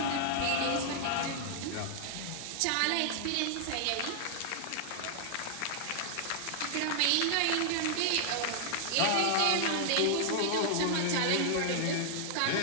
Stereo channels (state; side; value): different; both; correlation 0.00